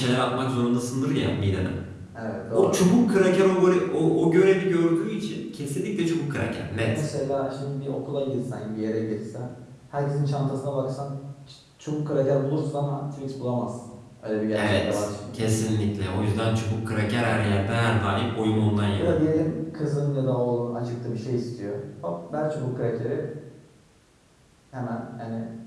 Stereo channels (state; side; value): identical; both; correlation 1.00